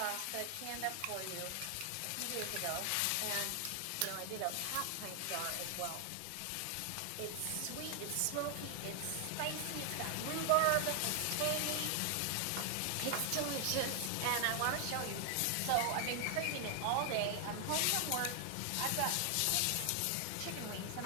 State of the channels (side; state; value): both; different; correlation 0.00